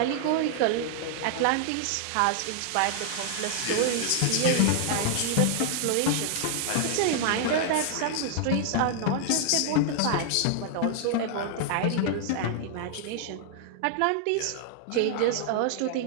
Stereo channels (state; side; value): different; both; correlation -0.01